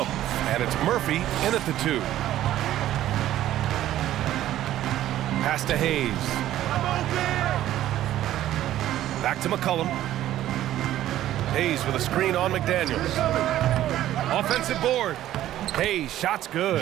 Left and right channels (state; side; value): quieter; left; 13.2 dB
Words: And it's Murphy in at the 2. Pass to Hayes. Back to McCollum. Hayes with a screen on McDaniels. Offensive board. Hayes, shot's